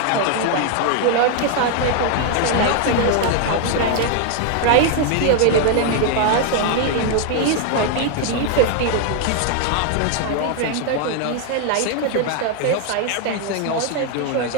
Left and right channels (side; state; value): both; different; correlation 0.00